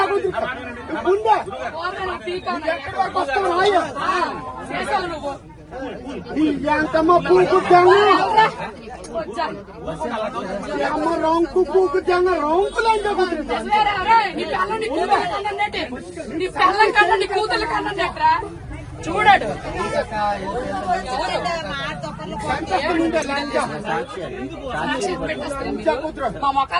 కుట్ర గుండె ఎక్కడి వరకు వస్తావు రాయ చేసావు నువ్వు ఎంతమ్మ పూకు తెంగ అమ్మ రొంకు పూకు తెంగ రొంకు లంచ కుట్ర నీ పిల్లం కన్నా నీ కూతురు కన్నా చూడాడు లంచ మా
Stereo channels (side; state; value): both; identical; correlation 1.00